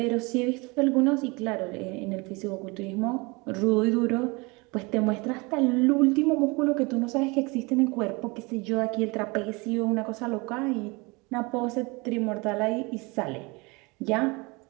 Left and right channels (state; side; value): quieter; left; 26.8 dB